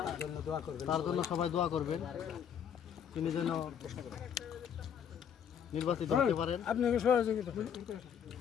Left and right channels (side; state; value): right; quieter; 8.3 dB